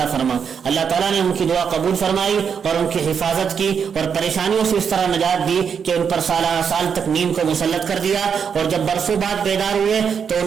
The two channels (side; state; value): left; quieter; 6.9 dB